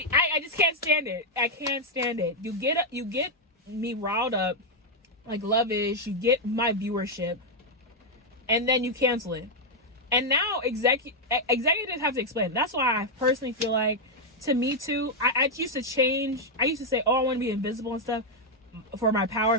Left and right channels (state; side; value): normal; both; correlation -0.01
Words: just can't stand it. I can't stand it. You get me riled up like Love Is. You get my viewership, and then you cancel it. And now executives have to explain. That's why I personally feel like, to me too, I used to change. I used to say, oh, I want to be invisible and stuff for my power